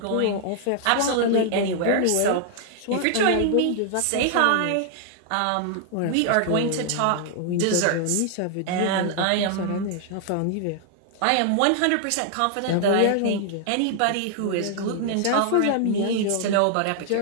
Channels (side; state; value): both; different; correlation 0.00